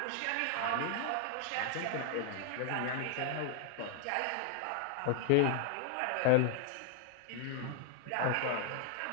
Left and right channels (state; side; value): different; both; correlation 0.00